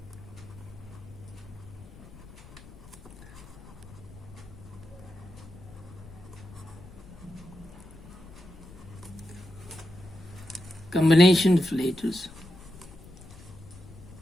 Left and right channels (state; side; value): noise; left; rumble, 18 dB below the sound